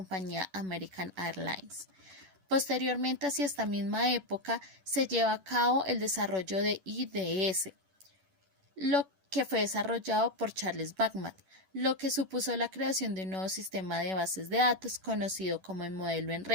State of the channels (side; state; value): left; late; 11 ms